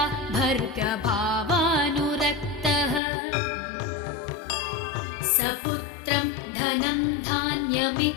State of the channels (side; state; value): right; drops out; at 3.0 s